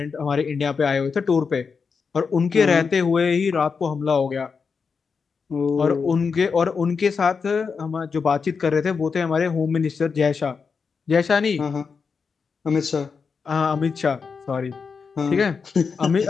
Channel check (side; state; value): right; quieter; 5.4 dB